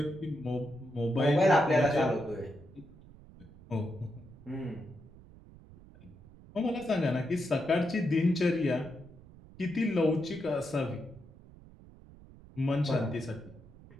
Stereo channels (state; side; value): noise; right; rumble, 21 dB below the sound